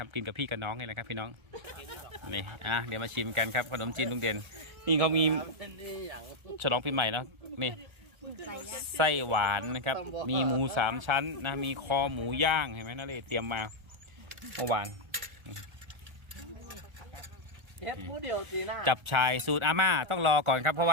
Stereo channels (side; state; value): left; late; 1.3 ms